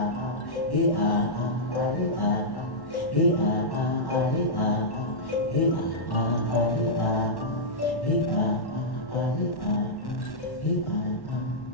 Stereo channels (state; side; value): late; right; 1.1 ms